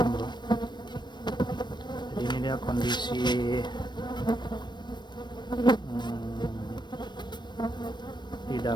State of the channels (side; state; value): right; late; 0.22 ms